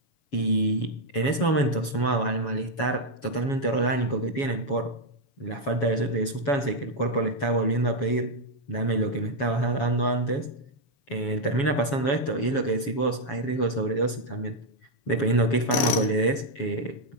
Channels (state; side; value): late; right; 7.2 ms